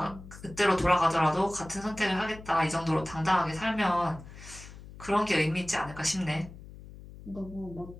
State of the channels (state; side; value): noise; left; hum, 16 dB below the sound